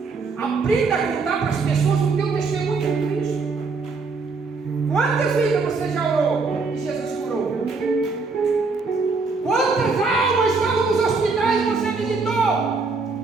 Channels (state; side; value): quieter; left; 4.3 dB